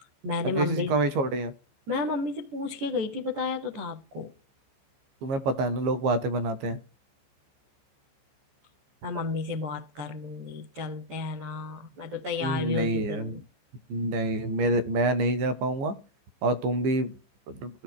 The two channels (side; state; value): left; late; 15 ms